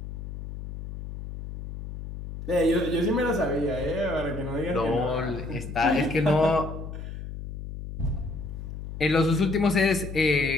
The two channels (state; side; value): noise; left; hum, 9 dB below the sound